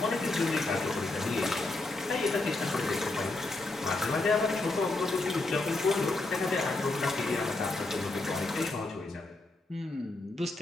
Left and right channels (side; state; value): right; quieter; 3.1 dB